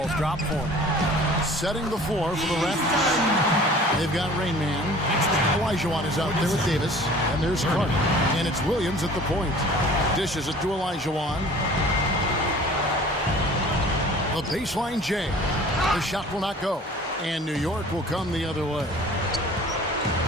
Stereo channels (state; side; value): normal; both; correlation 0.47